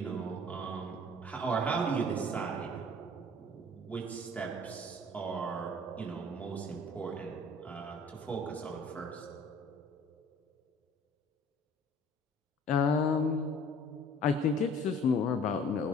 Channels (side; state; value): both; normal; correlation 0.51